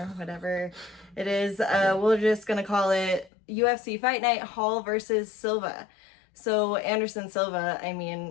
whatever it is. We're just going to call it UFC Fight Night Hall versus Silva. So Anderson Silva, I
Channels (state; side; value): drops out; right; at 3.3 s